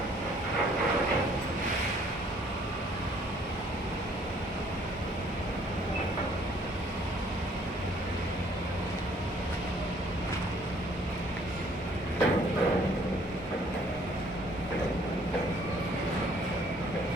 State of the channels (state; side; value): normal; both; correlation 0.60